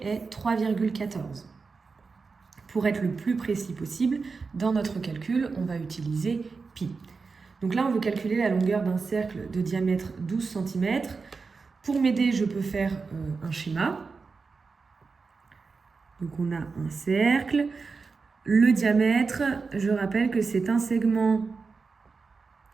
est 3,14. Pour être le plus précis possible, dans notre calcul, on va utiliser pi. Donc là, on veut calculer la longueur d'un cercle de diamètre 12 cm. Pour m'aider, je peux faire un schéma. Donc on a un cercle. Le diamètre, je rappelle que c'est un segment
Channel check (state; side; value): quieter; left; 4.6 dB